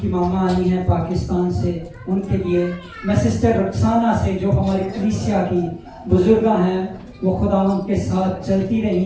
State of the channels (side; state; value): both; identical; correlation 1.00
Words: मामा आई हैं पाकिस्तान से, उनके लिए मैं सिस्टर रक्साना से जो हमारी कलीसिया की बुजुर्गा हैं, वो खुदा उनके साथ चलती